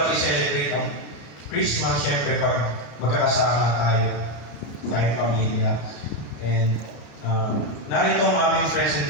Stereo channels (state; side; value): late; right; 33 ms